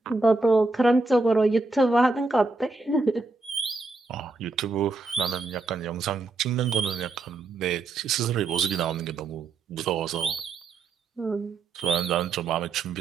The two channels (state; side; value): quieter; left; 3.6 dB